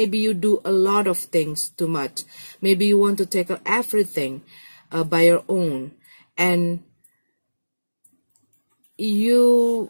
you do a lot of things too much. Maybe you want to take everything by your own, and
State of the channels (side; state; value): both; inverted; correlation -1.00